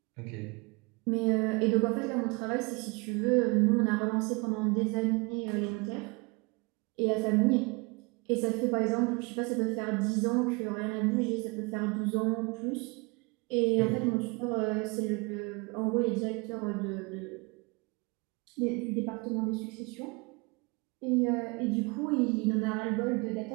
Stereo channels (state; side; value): quieter; left; 28.7 dB